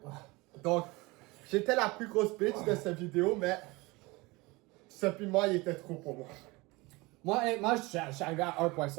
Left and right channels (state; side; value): quieter; left; 23.5 dB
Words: Donc, j'étais la plus grosse bitch de cette vidéo, mais ce piment, il était trop pour moi. Moi, je suis arrivé à